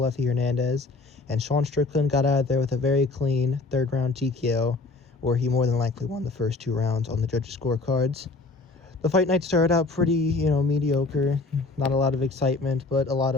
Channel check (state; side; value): quieter; right; 3.5 dB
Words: Hernandez, and Sean Strickland got out of there with a very clean third-round TKO, where he more than likely won the first 2 rounds on the judges' scorecards. The fight night started out pretty, mediocre, not a lot of excitement, but a lot